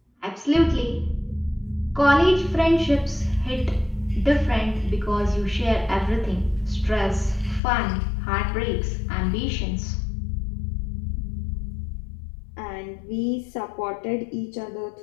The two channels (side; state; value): right; drops out; at 7.6 s